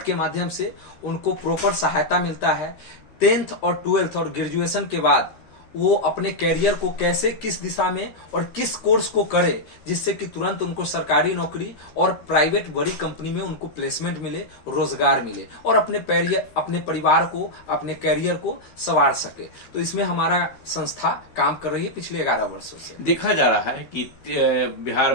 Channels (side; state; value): right; late; 13 ms